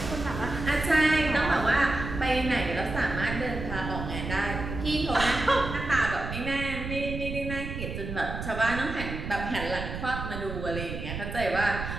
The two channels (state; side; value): noise; right; rumble, 6 dB below the sound